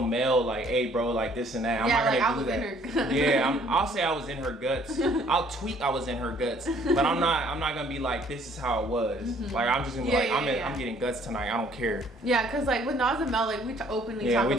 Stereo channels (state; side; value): normal; both; correlation 0.60